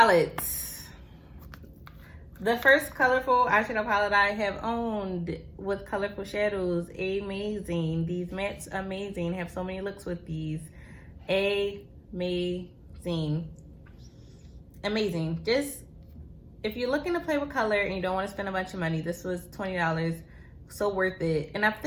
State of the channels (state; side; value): identical; both; correlation 1.00